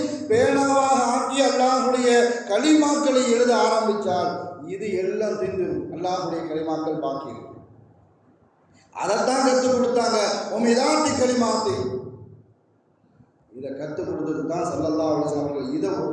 பேனாவாக ஆக்கி அல்லாஹ்வுடைய கலிமாக்களை எழுத ஆரம்பித்தால் இது எல்லாம் தின்றும். அல்லாஹ்வுடைய கலிமாக்கள் பாக்கி இருக்கு. அதைத்தான் கற்றுக் கொடுத்தாங்க. உமிதாத்தி கலிமாத்தி, இதை கற்றுக் கொடுத்தது தான் ஸல்லல்லாஹு அலைஹி வஸல்லம் அவர்கள். இதை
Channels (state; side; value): identical; both; correlation 1.00